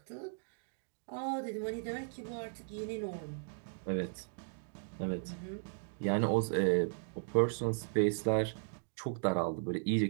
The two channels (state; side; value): silent; left; digital silence